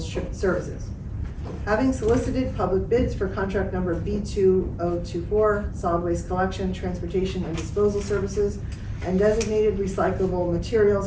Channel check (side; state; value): both; identical; correlation 1.00